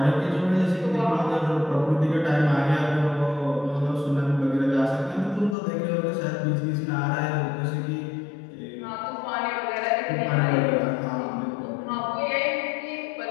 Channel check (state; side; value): drops out; right; at 5.6 s